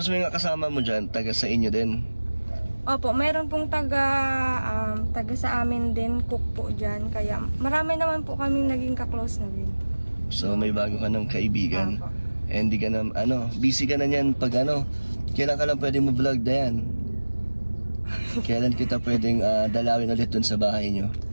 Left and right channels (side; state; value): both; inverted; correlation -1.00